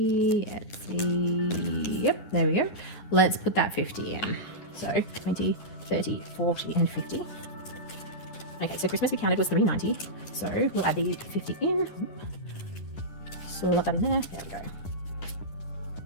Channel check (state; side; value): late; right; 10 ms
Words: Etsy. Yep, there we go. Let's put that 50 in. So 20, 30, 40, and 50. Okay, so Christmas we counted was $3.90. So we'll add the 50 in. Slot that in there. There we go.